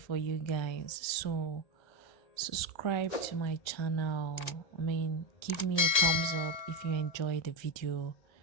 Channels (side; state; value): right; late; 1.3 ms